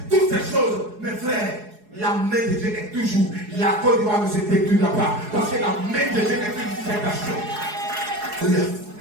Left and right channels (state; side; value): late; left; 4.8 ms